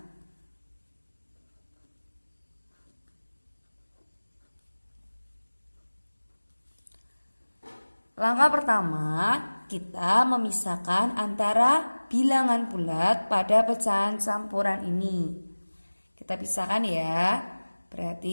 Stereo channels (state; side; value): inverted; both; correlation -1.00